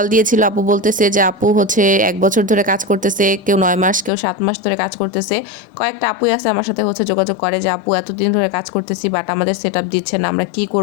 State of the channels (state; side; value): drops out; right; at 4.1 s